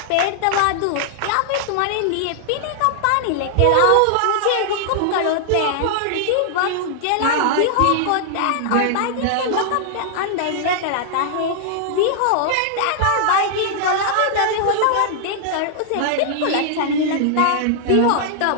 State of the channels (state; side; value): different; both; correlation -0.01